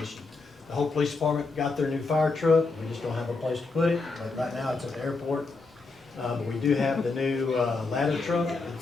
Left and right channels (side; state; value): right; quieter; 3.9 dB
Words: The whole police department got their new fire truck. We just don't have a place to put it. But right now it's at the airport. But we do have the new ladder truck.